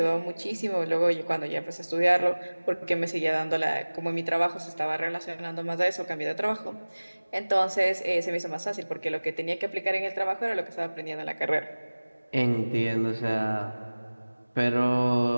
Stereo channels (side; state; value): both; inverted; correlation -1.00